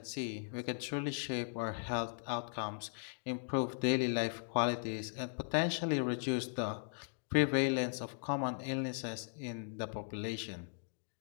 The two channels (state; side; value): silent; right; digital silence